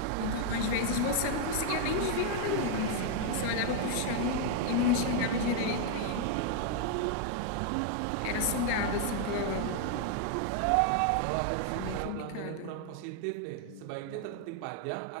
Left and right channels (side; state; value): both; different; correlation 0.00